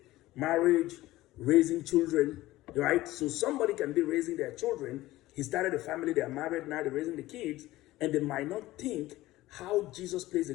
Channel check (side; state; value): right; quieter; 17.1 dB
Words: marriage, raising children, right? So somebody can be raising their children. He started a family, they are married, now they're raising the kids, and they might not think how Jesus plays a